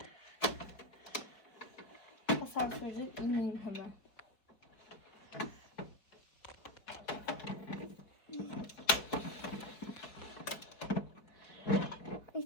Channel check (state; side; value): late; right; 4.6 ms